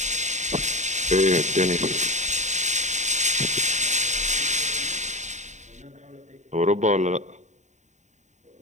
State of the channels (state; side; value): late; left; 0.34 ms